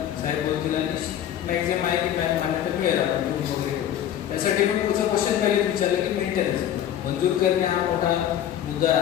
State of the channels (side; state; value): right; quieter; 10.7 dB